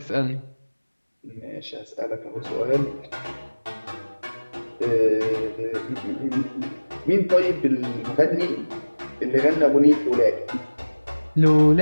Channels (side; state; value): both; inverted; correlation -1.00